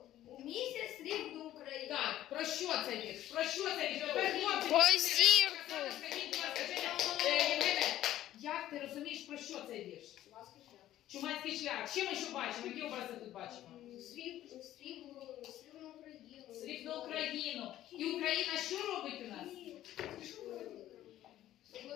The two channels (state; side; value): quieter; right; 13.3 dB